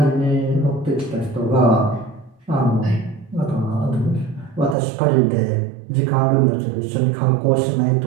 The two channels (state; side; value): drops out; left; at 4.8 s